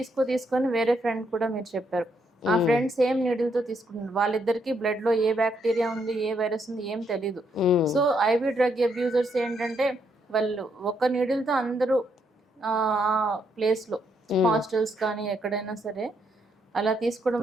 తీసుకొని వేరే ఫ్రెండ్ కూడా మీరు చెప్పారు, ఆ ఫ్రెండ్ సేమ్ నీడిల్తో తీసుకున్నారు, వాళ్ళిద్దరికి బ్లడ్లో ఏ బ్యాక్టీరియా ఉంది ఏ వైరస్ ఉంది ఏం తెలీదు. సో ఐవి డ్రగ్ అబ్యూజర్స్ ఏంటంటే వాళ్ళు ఒక నీడిల్తో అందరూ ఆ ప్లేస్లో హాస్టల్స్ కానీ ఎక్కడైనా సరే అలా తీసుకోవడం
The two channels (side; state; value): both; normal; correlation 0.75